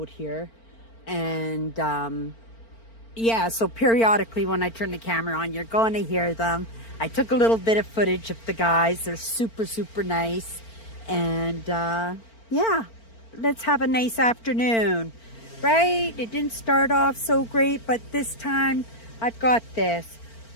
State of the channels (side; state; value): right; late; 4.4 ms